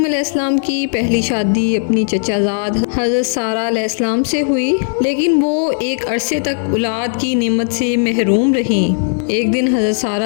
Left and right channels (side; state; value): right; silent; digital silence